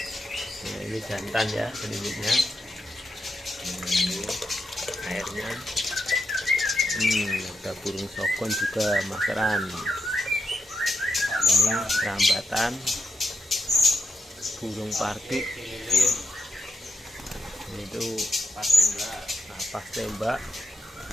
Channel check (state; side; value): normal; both; correlation 0.84